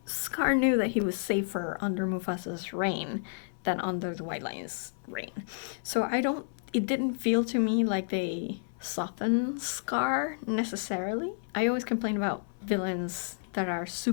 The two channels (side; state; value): right; silent; 57 dB below the other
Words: Scar knew that he was safer under Mufasa's reign than under the White Lion's reign. So it didn't feel to me like they softened Scar necessarily. I always complain about villains that are